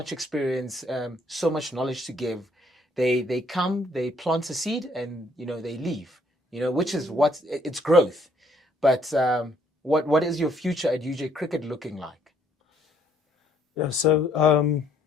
experience, so much knowledge to give, they come, they plant a seed, and they leave. Which is what it's growth. But what is your future at UJ Cricket looking like? Yeah, so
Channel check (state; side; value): normal; both; correlation 0.67